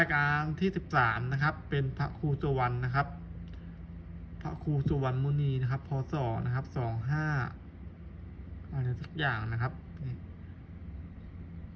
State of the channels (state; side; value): identical; both; correlation 1.00